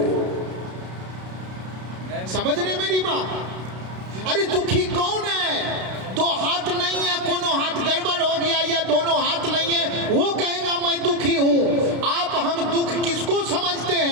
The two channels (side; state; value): left; late; 32 ms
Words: समझ रहे मेरी बात? अरे दुखी कौन है, 2 हाथ नहीं है, कोनो हाथ गड़बड़ हो गया या दोनों हाथ नहीं है, वो कहेगा मैं दुखी हूं। आप हम दुख किसको समझते